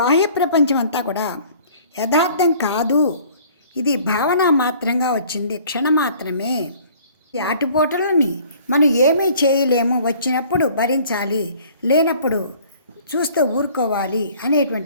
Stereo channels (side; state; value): both; inverted; correlation -0.53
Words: ప్రపంచం అంతా కూడా యథార్థం కాదు, ఇది భావన మాత్రంగా వచ్చింది, క్షణమాత్రమే. ఈ ఆటుపోటలని మనం ఏమీ చేయలేము, వచ్చినప్పుడు భరించాలి, లేనప్పుడు చూస్తూ ఊరుకోవాలి